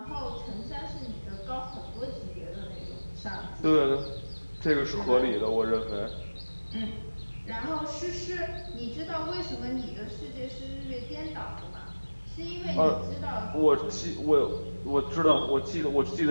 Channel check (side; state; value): both; inverted; correlation -1.00